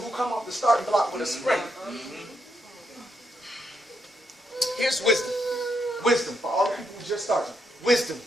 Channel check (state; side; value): normal; both; correlation 0.79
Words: who come off the starting block with a sprint. Here's wisdom. Wisdom for all the people who just started. Wisdom.